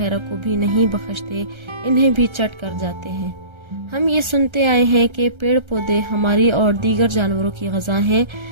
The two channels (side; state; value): left; late; 1.3 ms